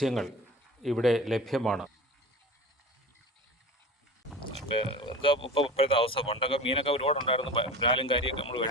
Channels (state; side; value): normal; both; correlation 0.34